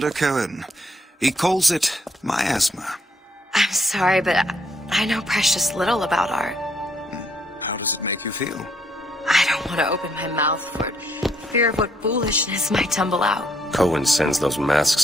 Cohen. He calls it miasma. I'm sorry, but I know precious little about art. How does it make you feel? I don't want to open my mouth for it. Fear of what foolishness might tumble out. Cohen sends those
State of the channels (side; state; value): both; normal; correlation 0.71